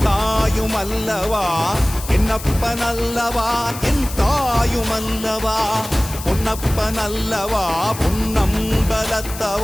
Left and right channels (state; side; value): noise; left; hiss, 12 dB below the sound